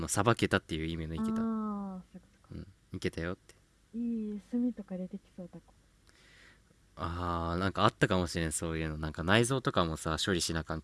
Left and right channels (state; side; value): identical; both; correlation 1.00